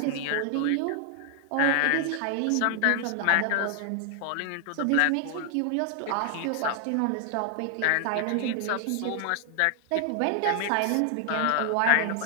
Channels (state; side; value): different; both; correlation 0.00